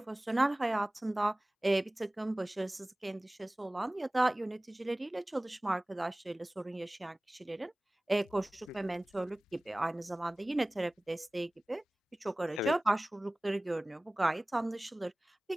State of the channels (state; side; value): normal; both; correlation 0.98